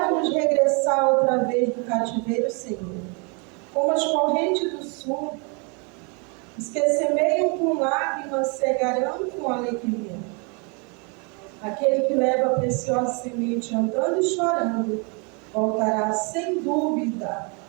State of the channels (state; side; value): quieter; left; 33.9 dB